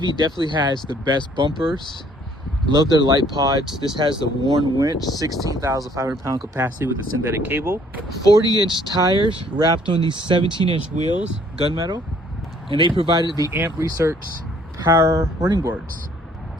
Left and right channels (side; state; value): both; normal; correlation 0.61